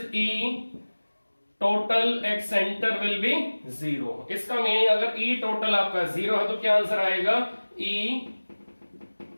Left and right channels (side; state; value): both; inverted; correlation -1.00